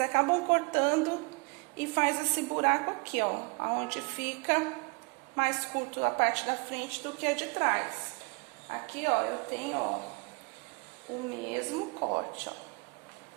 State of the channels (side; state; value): left; quieter; 31.4 dB